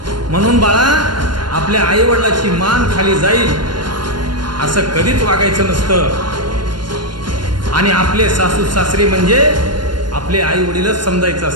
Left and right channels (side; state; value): left; late; 0.71 ms